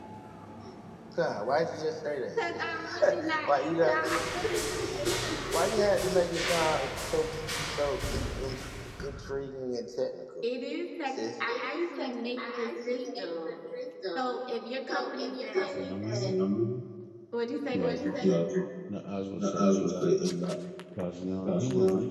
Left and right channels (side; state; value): both; identical; correlation 1.00